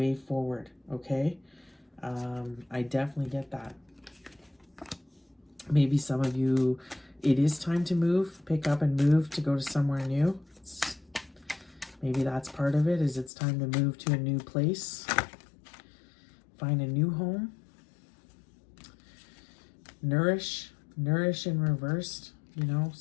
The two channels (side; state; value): right; drops out; at 13.3 s